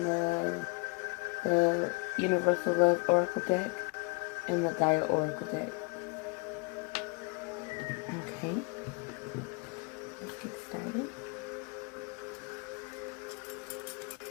the Universal Love Oracle deck and the Gaia Oracle deck. Okay, let's get started.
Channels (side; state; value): right; quieter; 31.3 dB